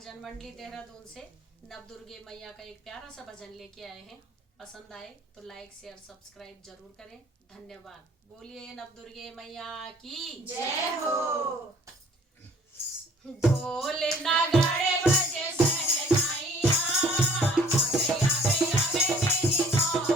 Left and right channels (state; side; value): normal; both; correlation 0.54